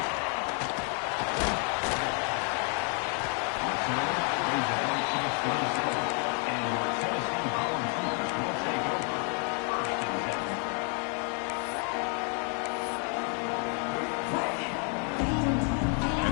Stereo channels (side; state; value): right; quieter; 39.9 dB